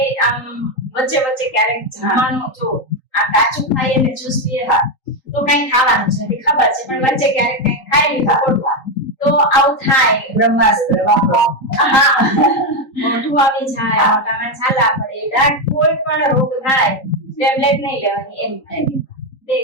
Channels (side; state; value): right; late; 3.8 ms